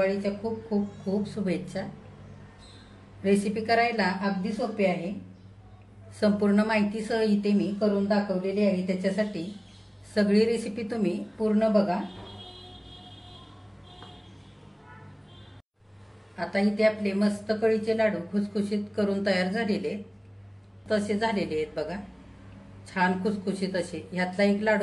खूप खूप खूप शुभेच्छा. रेसिपी करायला अगदी सोपी आहे. संपूर्ण माहितीसह इथे मी करून दाखवलेली आहे. त्याच्यासाठी सगळी रेसिपी तुम्ही पूर्ण बघा. आता इथे आपले मस्त कळीचे लाडू खुसखुशीत करून तयार झालेले तसे झालेले आहेत बघा. छान खुसखुशीत असे. ह्यातला एक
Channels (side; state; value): both; identical; correlation 1.00